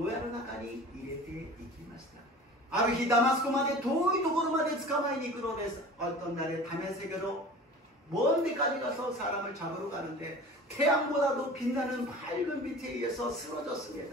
屋の中に入れていきました。 ある日ダマスコまで遠いところまで捕まえに行くのです。 어떤 날에 다메섹으로 먼 데까지 가서 사람을 잡으러 가는데 태양보다도 빛나는 밝은 빛에 의해서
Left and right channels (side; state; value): both; normal; correlation 0.40